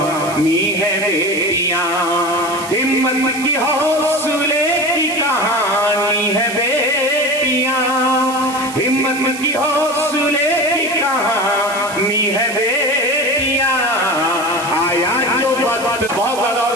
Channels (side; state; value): right; noise; hiss, 13 dB below the sound